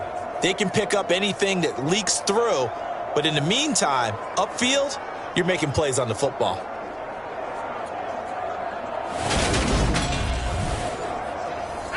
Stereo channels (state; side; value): identical; both; correlation 1.00